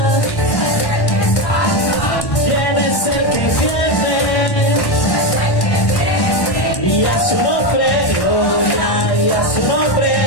¿Quién es el que viene? Y a su nombre, gloria, y a su nombre,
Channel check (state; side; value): late; right; 1.1 ms